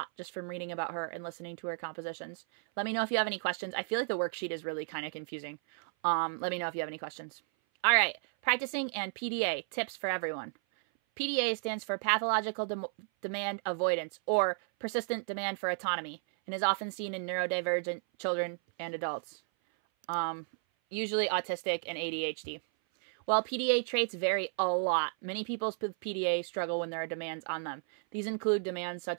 just from reading about her and listening to her compositions. Let me know if you have any questions. I feel like the worksheet is really kind of confusing. Let me know if you have any questions. All right, practicing and PDA, tips for everyone. PDA stands for Pathological Demand Avoidance, or Persistent Demand for Autonomy, and is often seen in neurodivergent children and adults, usually autistic and ADHD. While PDA traits vary a lot, many people with PDA struggle when there are demands on them. These include demands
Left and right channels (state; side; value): silent; left; 56 dB below the other